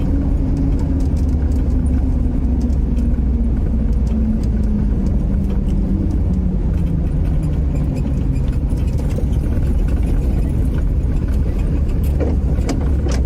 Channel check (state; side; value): identical; both; correlation 1.00